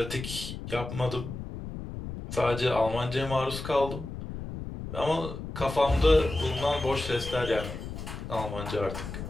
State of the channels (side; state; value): left; noise; rumble, 8 dB below the sound